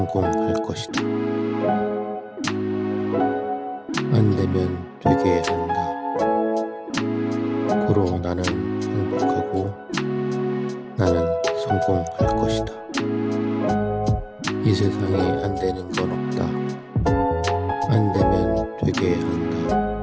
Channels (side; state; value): both; identical; correlation 1.00